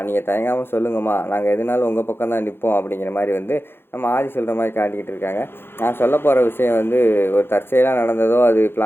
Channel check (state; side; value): late; right; 0.11 ms